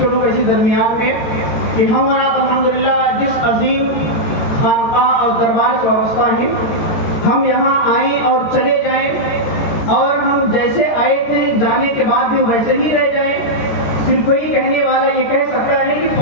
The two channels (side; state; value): right; late; 13 ms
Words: کروں گا اسی درمیان میں کہ ہم اور آپ الحمدللہ جس عظیم خانقاہ اور دربار سے وابستہ ہیں ہم یہاں آئیں اور چلے جائیں اور ہم جیسے آئے تھے جانے کے بعد بھی ویسے ہی رہ جائیں. صرف کوئی کہنے والا یہ کہہ سکتا ہے کہ